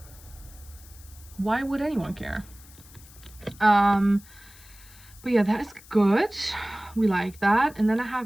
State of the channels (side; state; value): left; noise; hiss, 22 dB below the sound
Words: Why would anyone care? But yeah, that's good. We like that. And then I